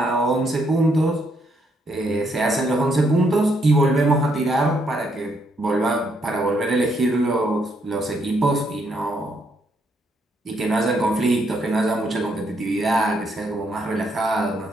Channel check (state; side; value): normal; both; correlation 0.74